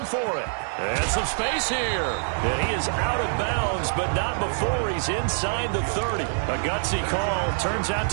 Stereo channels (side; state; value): left; silent; 62 dB below the other